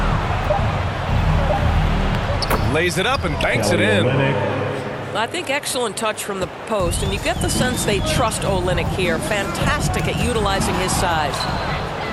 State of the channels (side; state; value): both; identical; correlation 1.00